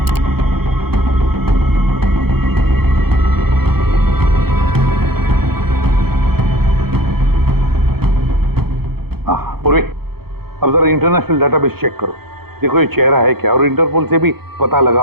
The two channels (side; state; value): left; late; 0.96 ms